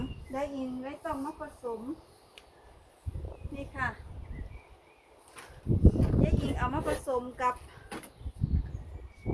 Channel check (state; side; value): identical; both; correlation 1.00